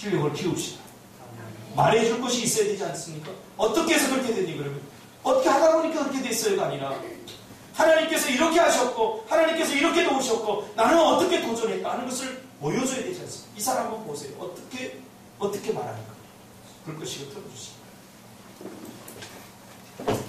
키웁시다. 말해줄 것이 있어야 되지 않습니까? 어떻게 해서 그렇게 되니 그러면 어떻게 하다 보니까 그렇게 됐어요가 아니라 하나님께서 이렇게 하셨고 하나님께서 이렇게 도우셨고 나는 어떻게 도전했다 하는 것을 보여줘야 되지 않습니까? 이 사람 한번 보세요. 어떻게 말하는가. 불 끄시고 틀어주시기 바랍니다.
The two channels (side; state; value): both; identical; correlation 1.00